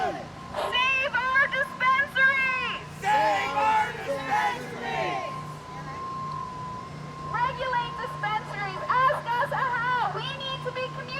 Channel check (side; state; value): both; identical; correlation 1.00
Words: Save our dispensaries! Save our dispensaries! Regulate dispensaries! Ask us how! We need to be